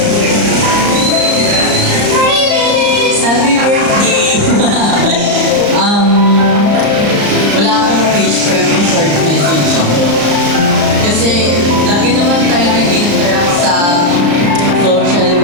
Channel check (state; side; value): late; left; 34 ms